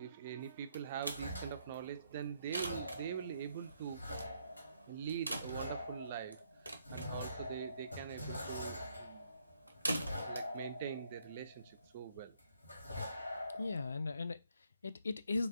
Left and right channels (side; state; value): both; inverted; correlation -0.72